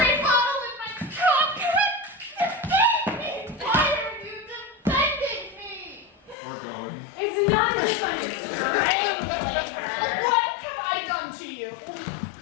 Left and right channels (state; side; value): drops out; right; at 6.4 s